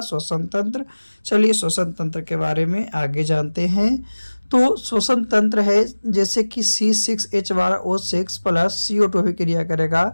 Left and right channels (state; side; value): inverted; both; correlation -1.00